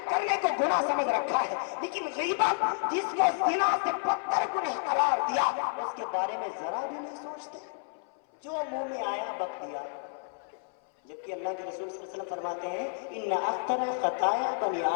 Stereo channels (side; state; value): right; silent; 58 dB below the other